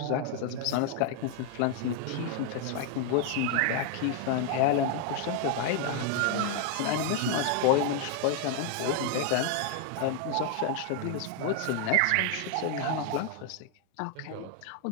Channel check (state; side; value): different; both; correlation 0.00